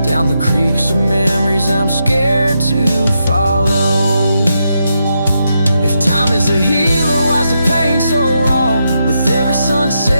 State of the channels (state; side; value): inverted; both; correlation -0.83